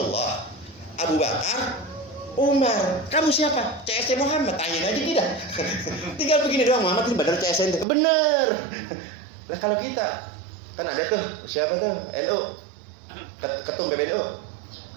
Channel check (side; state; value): left; drops out; at 7.9 s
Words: Abu Bakar, Umar. Kamu siapa? CS-nya Muhammad. Tanyain aja kita. Tinggal begini doang, Muhammad ini benar CS-nya. Bener. Nah kalau kita kan ada tuh siapa tuh NU, ketum PBNU.